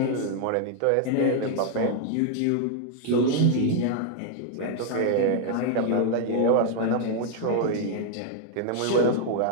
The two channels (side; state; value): both; different; correlation 0.00